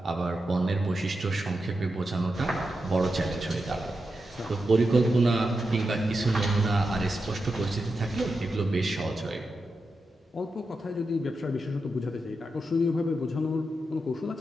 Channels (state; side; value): normal; both; correlation 0.88